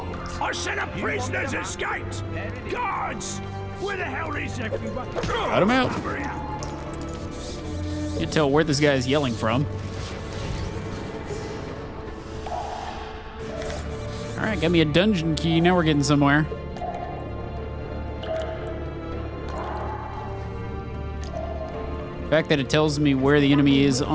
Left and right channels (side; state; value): both; identical; correlation 1.00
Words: I said a prisoner's escaped! Guards! Where the hell is everyone? Cut him out. Can't tell where this guy's yelling from. Alright, got me a dungeon key. Now we're getting somewhere. The fact that it tells me where the enemy is